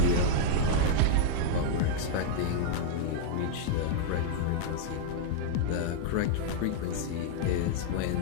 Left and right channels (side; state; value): both; different; correlation -0.01